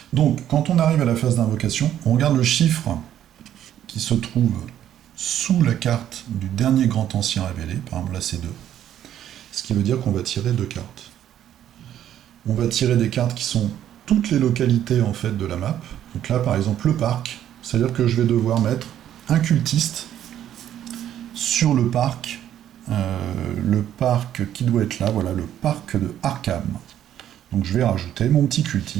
Donc, quand on arrive à la phase d'invocation, on regarde le chiffre qui se trouve sous la carte du dernier grand ancien révélé, par exemple là c'est 2, ce qui veut dire qu'on va tirer 2 cartes. On va tirer des cartes qui sont toutes les localités en fait de la map. Donc là par exemple le parc, c'est-à-dire que je vais devoir mettre un cultiste sur le parc qui doit être là, voilà, le parc de Arkham. Donc je vais rajouter mon petit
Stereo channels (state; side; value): quieter; left; 11.0 dB